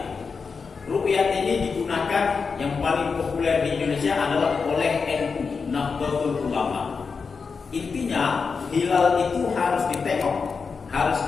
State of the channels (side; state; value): right; quieter; 5.2 dB